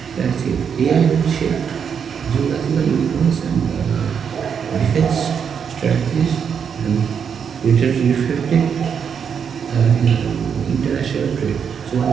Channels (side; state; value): left; quieter; 7.2 dB